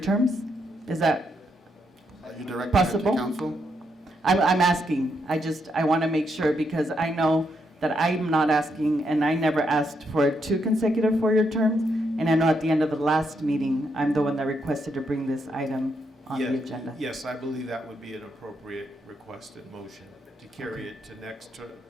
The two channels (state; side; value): normal; both; correlation 0.79